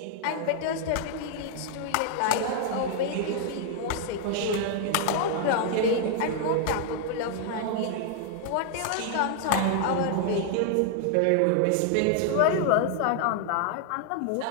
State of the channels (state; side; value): different; both; correlation 0.00